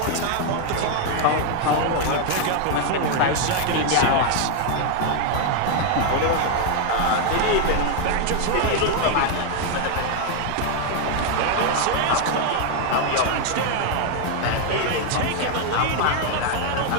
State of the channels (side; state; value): both; different; correlation 0.00